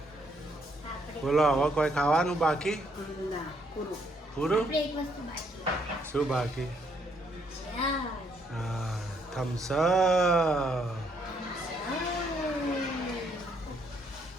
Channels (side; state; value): both; normal; correlation 0.71